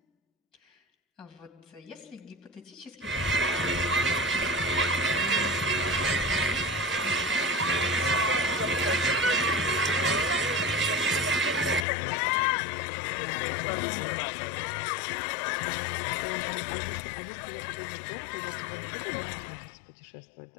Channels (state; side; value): drops out; right; at 11.9 s